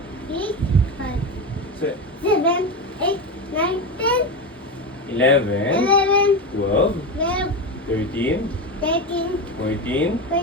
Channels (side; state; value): both; normal; correlation 0.18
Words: 6, 5, 7, 8, 9, 10, 11, 11, 12, 12, 13, 13, 14.